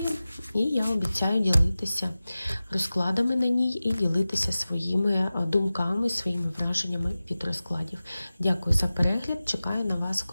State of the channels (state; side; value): inverted; both; correlation -0.96